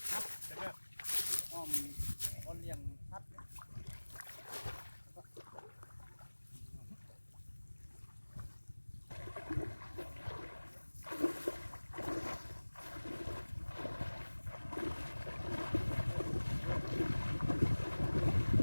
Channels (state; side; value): inverted; both; correlation -1.00